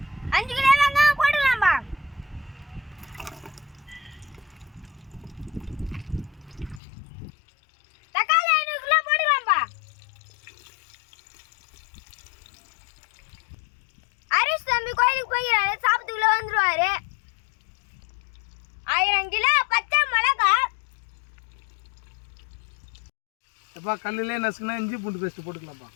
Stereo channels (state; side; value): drops out; right; at 6.8 s